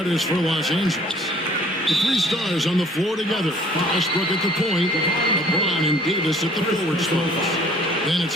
for Los Angeles. The three stars on the floor together. Westbrook at the point, LeBron and Davis at the forward spots. Then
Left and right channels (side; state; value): both; normal; correlation 0.55